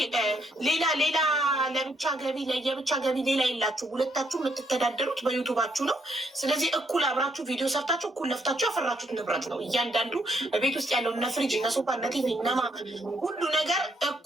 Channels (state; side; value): normal; both; correlation 0.72